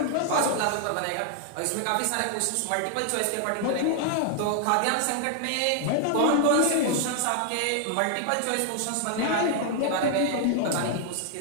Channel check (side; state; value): both; different; correlation 0.00